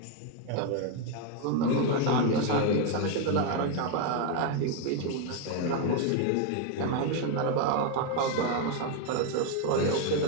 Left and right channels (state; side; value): different; both; correlation 0.01